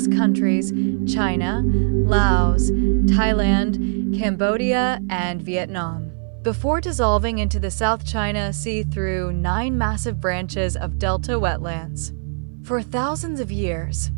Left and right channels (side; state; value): left; silent; 58 dB below the other